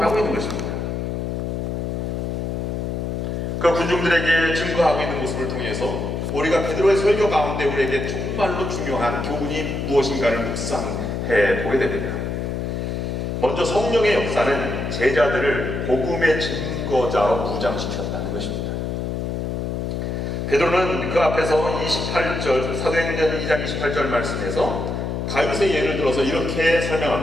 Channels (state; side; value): noise; left; hum, 2 dB below the sound